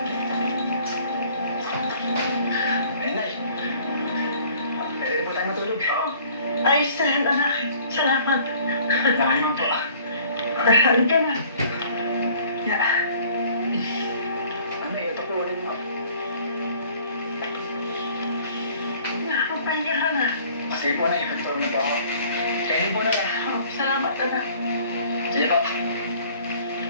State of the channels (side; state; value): both; inverted; correlation -0.54